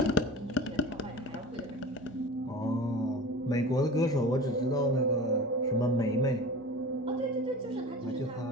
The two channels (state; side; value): normal; both; correlation 0.35